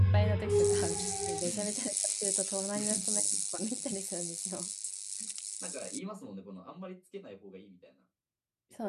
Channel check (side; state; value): both; identical; correlation 1.00